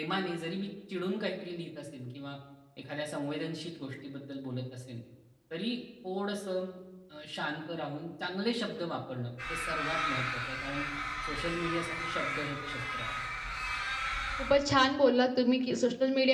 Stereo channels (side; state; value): both; identical; correlation 1.00